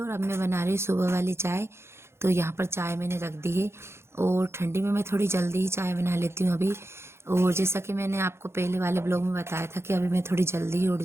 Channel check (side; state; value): left; late; 0.12 ms